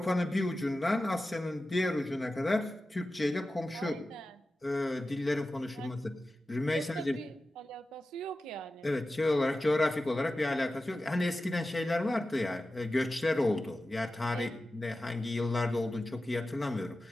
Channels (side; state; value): both; normal; correlation 0.94